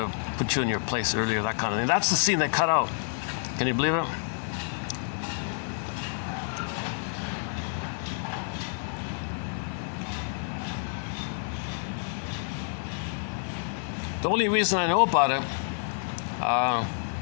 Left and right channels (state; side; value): silent; right; 59 dB below the other